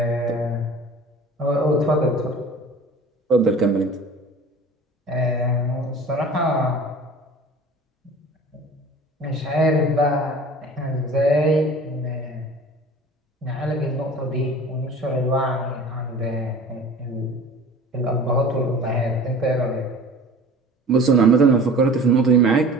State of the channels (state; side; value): normal; both; correlation 0.42